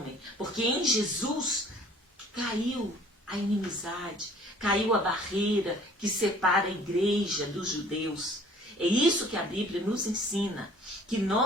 porque em Jesus caiu a inimizade, caiu a barreira que separa a igreja dos judeus. É isso que a Bíblia nos ensina, que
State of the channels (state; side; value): normal; both; correlation 0.54